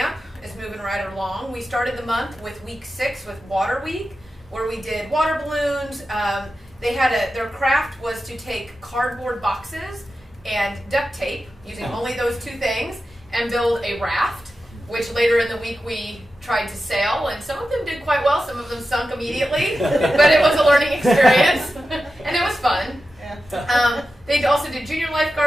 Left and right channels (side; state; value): both; normal; correlation 0.92